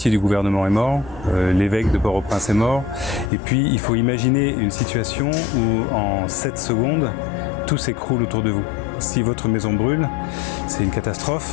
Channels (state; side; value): drops out; right; at 3.3 s